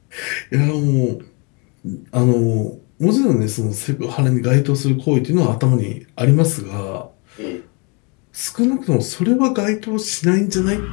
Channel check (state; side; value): quieter; right; 32.4 dB